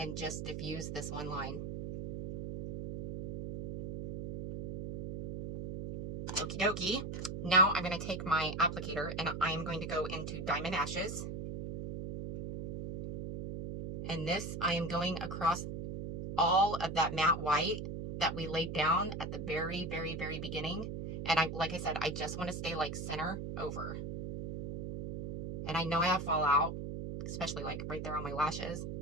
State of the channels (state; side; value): noise; right; hum, 6 dB below the sound